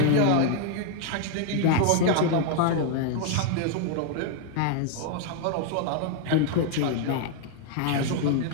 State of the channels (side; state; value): both; different; correlation 0.00